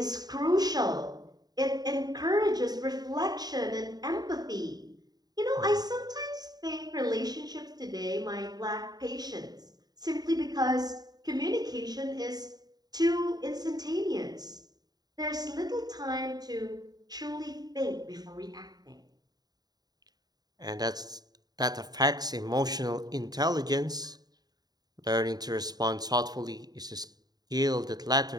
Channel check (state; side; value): late; left; 0.19 ms